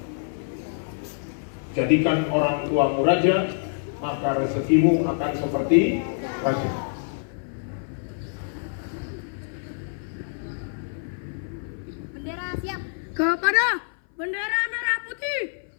Jadikan orang tuamu raja, maka rezekimu akan seperti raja. Bendera siap. Kepada bendera merah putih,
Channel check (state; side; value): silent; right; 57 dB below the other